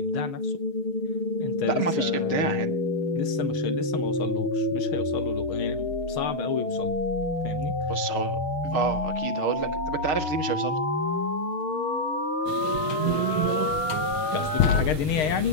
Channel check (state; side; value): late; right; 6.5 ms